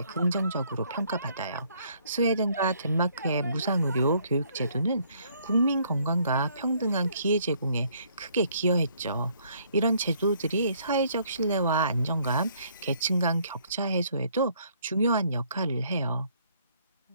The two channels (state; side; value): inverted; both; correlation -0.65